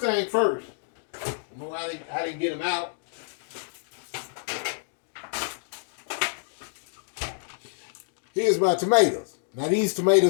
thing first, I didn't get them out. Here's my tomatoes. Now, these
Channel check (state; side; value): silent; right; digital silence